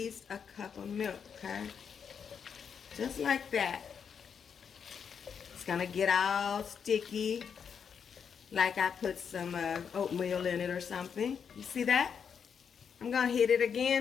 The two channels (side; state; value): right; quieter; 7.0 dB